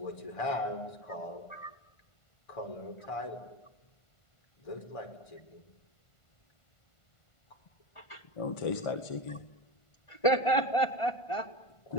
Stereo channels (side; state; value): right; late; 1.5 ms